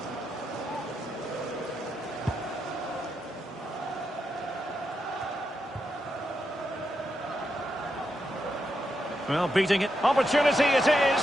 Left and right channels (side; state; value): both; normal; correlation 0.84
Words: Well, beating it. Opportunity it is.